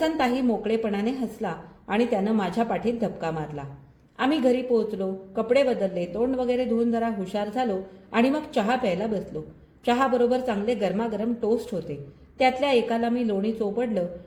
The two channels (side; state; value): both; identical; correlation 1.00